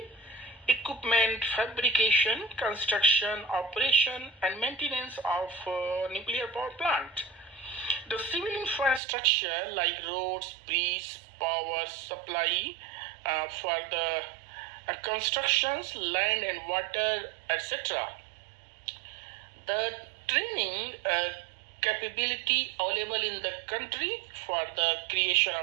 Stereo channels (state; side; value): drops out; left; at 9.0 s